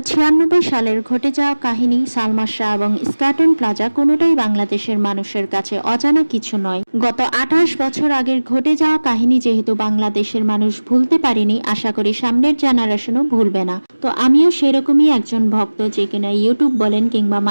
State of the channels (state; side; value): inverted; both; correlation -1.00